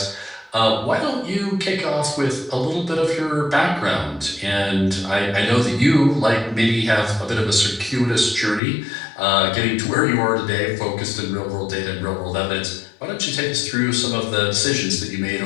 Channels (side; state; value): right; drops out; at 8.6 s